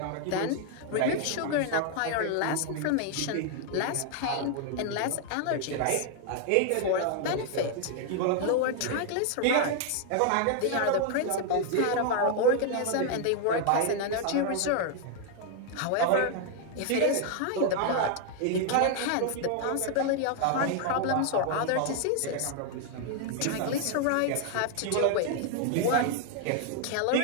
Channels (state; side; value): different; both; correlation 0.00